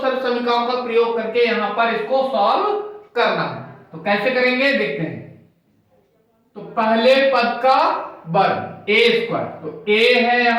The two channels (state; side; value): identical; both; correlation 1.00